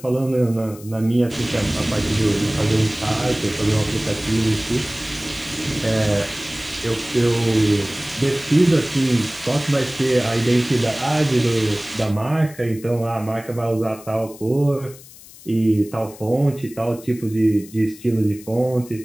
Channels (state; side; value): noise; left; hiss, 20 dB below the sound